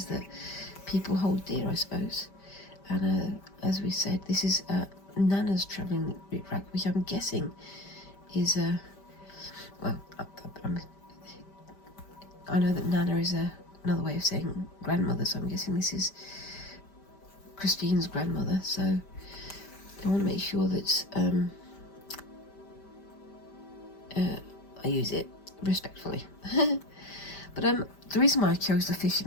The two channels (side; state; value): right; late; 5.1 ms